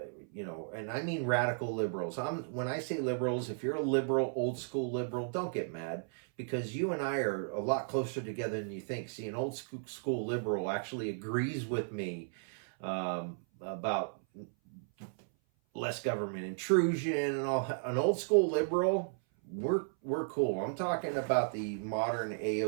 I mean radical liberals. When I say liberals, if you're a liberal, old school liberal, don't get mad, because you and I are a lot closer together than you think. See, an old school liberal actually agrees with me about less government intrusion and all. An old school liberal, we're cool. I'm talking about the modern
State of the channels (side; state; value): left; silent; 55 dB below the other